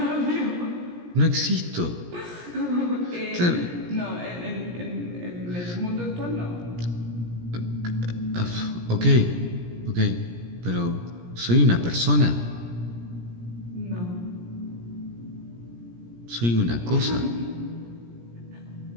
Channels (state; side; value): late; left; 17 ms